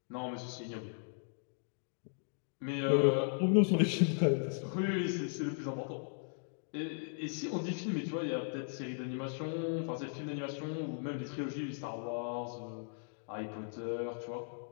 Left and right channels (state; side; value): silent; right; digital silence